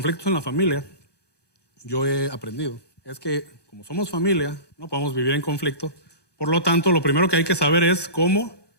en la familia, yo he aprendido, es que como somos familia, no podemos vivir en conflicto. Por lo tanto, lo primero que hay que saber es cómo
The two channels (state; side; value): late; right; 1.2 ms